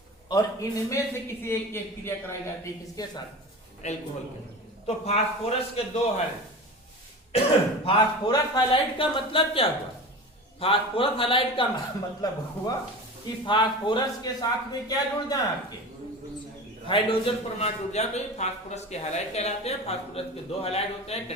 और इनमें से किसी एक की अभिक्रिया कराई जाती है किसके साथ? अल्कोहल के साथ। तो फास्फोरस के दो हाइलाइड। फास्फोरस हाइलाइड का मतलब क्या हुआ? फास्फोरस हाइलाइड का मतलब हुआ कि फास्फोरस के साथ में क्या जुड़ जाए? आपके हाइड्रोजन परमाणु जुड़ जाए, तो ये फास्फोरस के हाइलाइड कहलाते हैं। फास्फोरस के दो हाइलाइड होते हैं,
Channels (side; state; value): both; normal; correlation 0.31